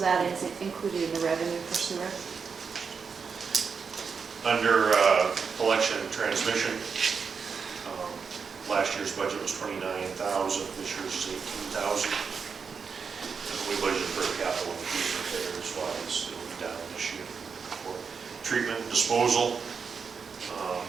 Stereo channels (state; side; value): quieter; left; 5.8 dB